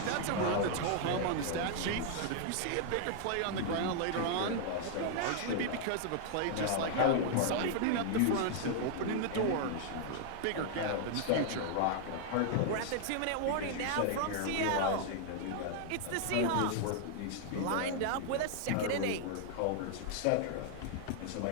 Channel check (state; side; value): different; both; correlation 0.00